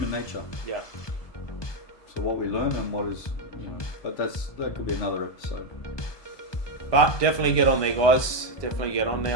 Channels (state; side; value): late; right; 1.2 ms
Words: nature. Yeah. So what we learn and what is, but that could be another episode. But definitely get on there, guys. Definitely get on